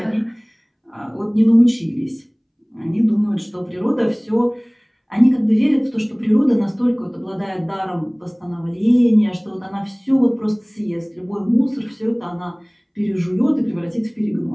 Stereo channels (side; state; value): both; identical; correlation 1.00